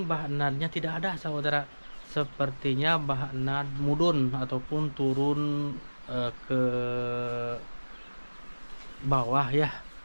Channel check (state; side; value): inverted; both; correlation -1.00